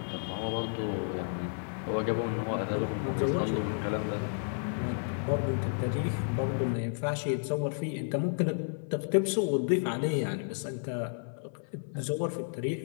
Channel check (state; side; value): silent; right; 57 dB below the other